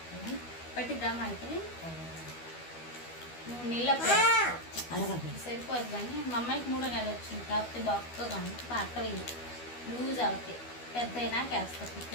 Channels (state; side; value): late; right; 12 ms